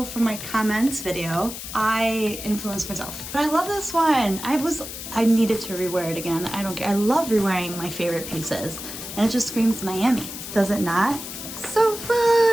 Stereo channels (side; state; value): left; noise; hiss, 9 dB below the sound